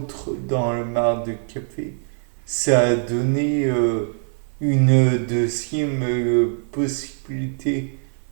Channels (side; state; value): left; silent; 58 dB below the other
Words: dans le marc de café, ça a donné une deuxième possibilité